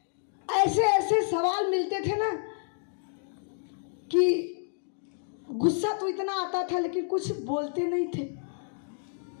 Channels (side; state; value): right; silent; digital silence